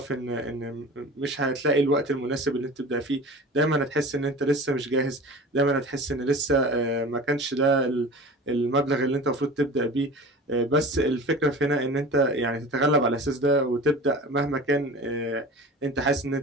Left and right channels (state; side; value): normal; both; correlation 0.37